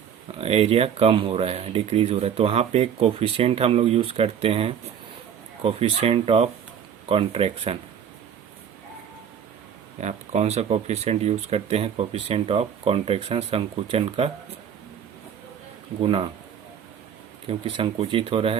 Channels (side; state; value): left; quieter; 8.5 dB